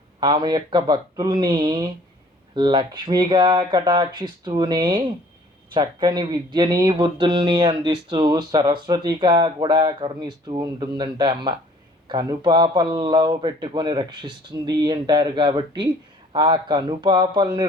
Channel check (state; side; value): normal; both; correlation 0.54